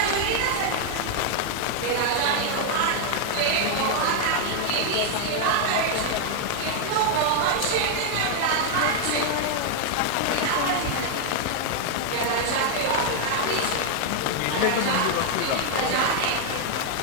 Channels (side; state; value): both; different; correlation 0.00